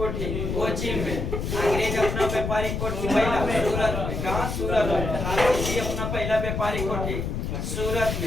कोचीन में। अंग्रेज अपना व्यापारिक कोठी पहला सूरत में। कहाँ? सूरत में। फ्रांसीसी अपना पहला व्यापारिक कोठी सूरत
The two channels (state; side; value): noise; left; rumble, 3 dB below the sound